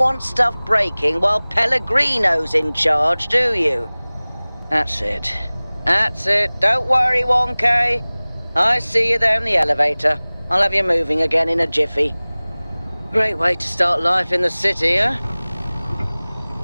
stuff breaking while Pellegrino's in charge, do you? That's it. That's it. Don't worry, 1K. I see you there in the elevator. I'll have you moving again in a jiffy. Great way to start life in the city, huh?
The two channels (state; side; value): inverted; both; correlation -1.00